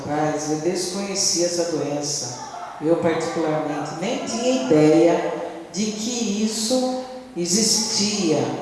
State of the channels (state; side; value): identical; both; correlation 1.00